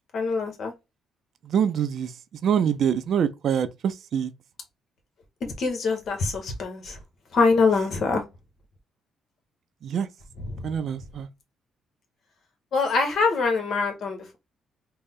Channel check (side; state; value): both; normal; correlation 0.70